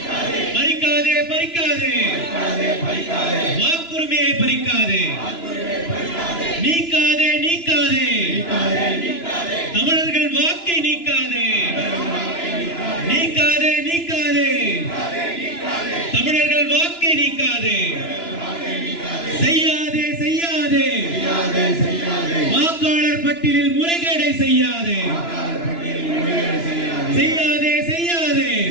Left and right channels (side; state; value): right; late; 2.9 ms